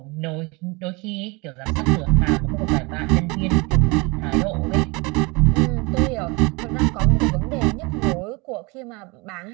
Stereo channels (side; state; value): left; quieter; 26.9 dB